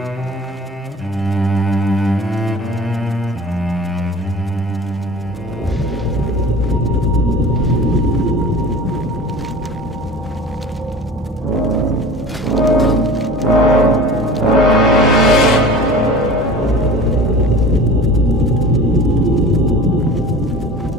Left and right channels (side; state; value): both; normal; correlation 0.39